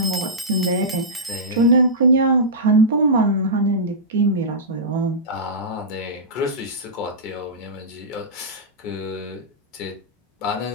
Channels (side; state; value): both; normal; correlation -0.14